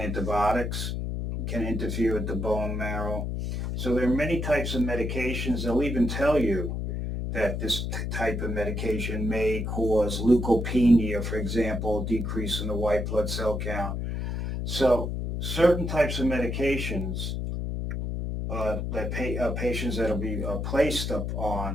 can interfere with the bone marrow. So there are many types of medications. They'll even tell you that this type of medication may cause leukopenia, for example, decrease in the white blood cell count. So certain types of medications that patients that will be placed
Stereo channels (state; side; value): noise; left; hum, 2 dB below the sound